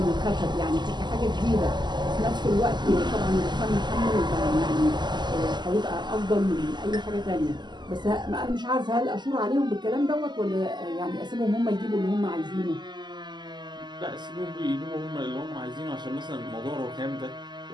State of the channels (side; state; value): left; late; 0.21 ms